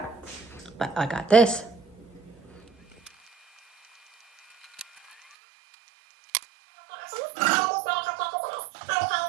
but I got this.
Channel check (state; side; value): drops out; left; at 5.2 s